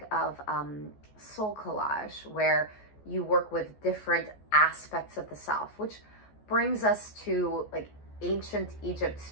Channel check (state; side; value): late; right; 14 ms